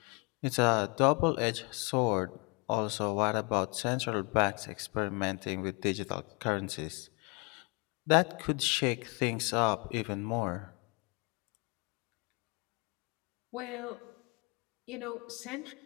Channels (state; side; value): quieter; right; 30.6 dB